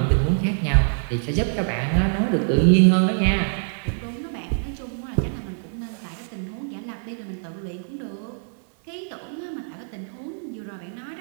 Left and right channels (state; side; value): silent; left; 61 dB below the other